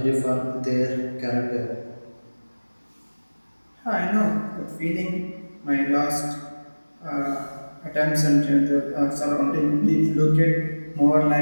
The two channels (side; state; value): both; inverted; correlation -1.00